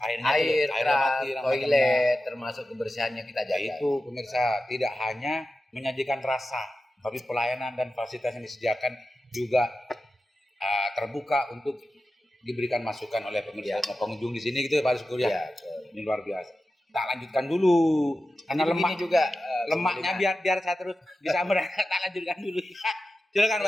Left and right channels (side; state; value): both; normal; correlation 0.93